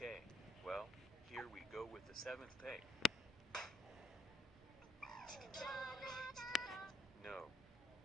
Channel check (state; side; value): normal; both; correlation 0.72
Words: well, here we go with the 7th take. No.